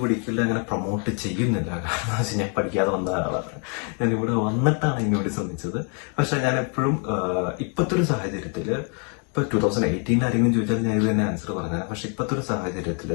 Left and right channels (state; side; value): quieter; right; 39.4 dB